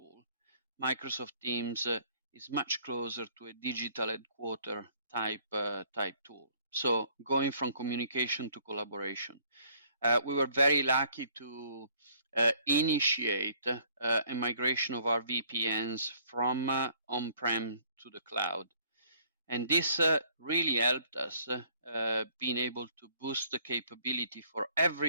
Microsoft Teams is much closer to a digital headquarter type tool. So going from communication to collaboration. We were very lucky to initiate a migration of our VPNs from on-prem to the cloud. And this really helped us being able to boost the capability for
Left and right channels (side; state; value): both; inverted; correlation -0.61